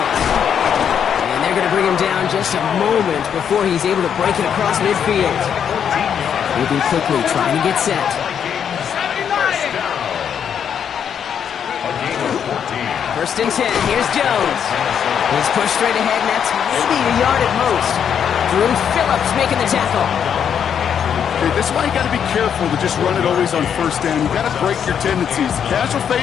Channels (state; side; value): quieter; right; 8.1 dB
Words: And they're going to bring him down just a moment before he's able to break it across midfield. Moving quickly, trying to get set. First and 10. Here's Jones. He's pushed straight ahead, and that's maybe a yard at most. Drew Phillips making the tackle. Okay, this is why you got to be careful to just run it always on first down. You got to break your tendencies. The casual